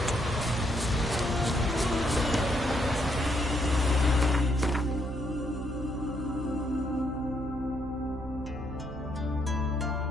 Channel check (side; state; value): right; noise; hum, 12 dB below the sound